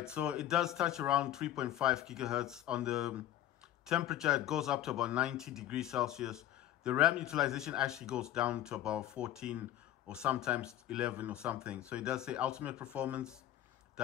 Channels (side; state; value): right; quieter; 12.5 dB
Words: so it does touch around 3.5 gigahertz on the temperature. It goes up to about 90 degrees Celsius. The RAM utilization actually goes down to about 14 or sometimes 11 or something. So it does say ultimate performance.